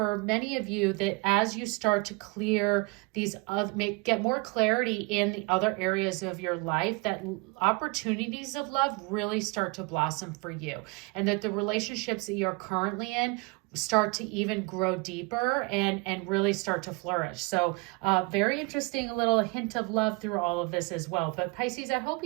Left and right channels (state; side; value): quieter; left; 28.3 dB